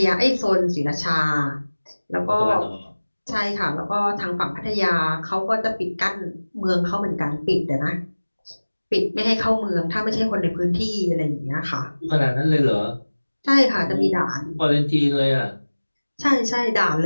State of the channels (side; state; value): both; inverted; correlation -1.00